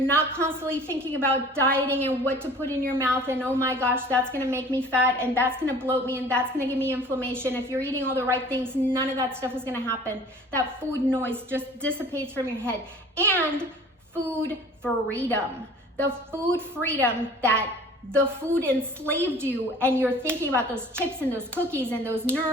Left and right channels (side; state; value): both; normal; correlation 0.47